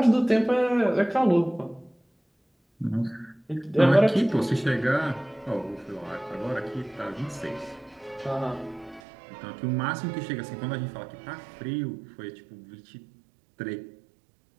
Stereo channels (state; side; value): drops out; left; at 9.0 s